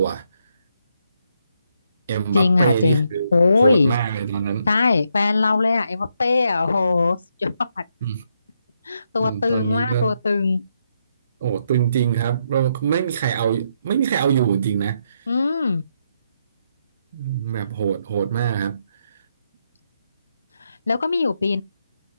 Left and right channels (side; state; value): both; inverted; correlation -0.78